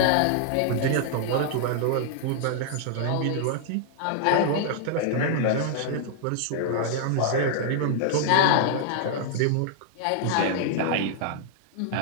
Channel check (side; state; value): both; different; correlation -0.01